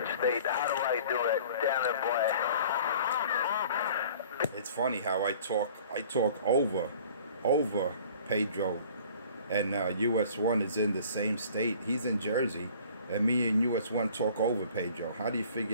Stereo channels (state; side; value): inverted; both; correlation -0.49